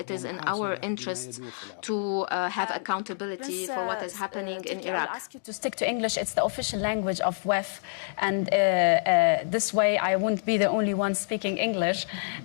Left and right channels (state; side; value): silent; right; digital silence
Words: is in our ومحاسبة لما interest يدور في العراق. to have accountability Prince for what is happening in Turkey, I will Iraq. ask you to stick to English. It's the official language of WEF, and this way I won't be the only one speaking English.